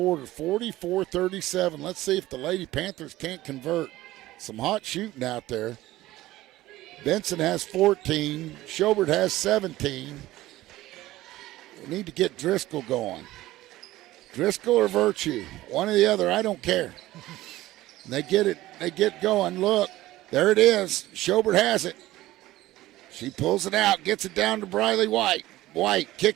44-37. Let's see if the Lady Panthers can't convert. Some hot shooting out there. Benson has 14. Schobert has 17. We need to get Driscoll going. Driscoll or Virtue, one or the other, I don't care. They get it, they get going. Look, there it is. Schobert has it. She pulls it out, gets it down to Briley White. White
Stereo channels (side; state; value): left; quieter; 16.5 dB